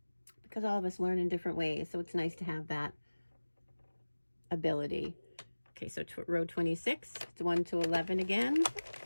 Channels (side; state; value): both; inverted; correlation -1.00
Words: Because all of us learn in different ways, so it's nice to have that ability. Okay, so row 26, it's 1 to 11 again.